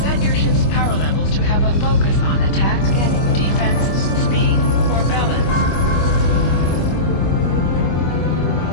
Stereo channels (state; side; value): late; right; 25 ms